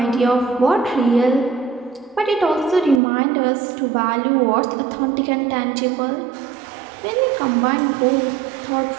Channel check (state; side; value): drops out; left; at 3.0 s